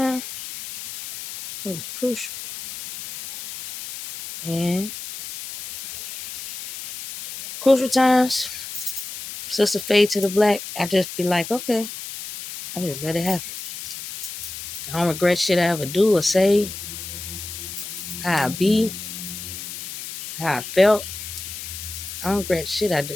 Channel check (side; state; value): left; noise; hiss, 9 dB below the sound